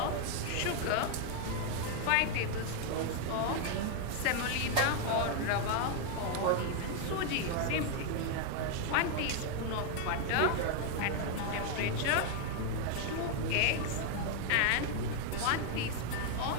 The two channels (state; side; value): different; both; correlation 0.00